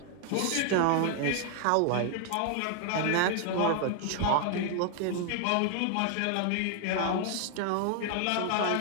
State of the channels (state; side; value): different; both; correlation 0.00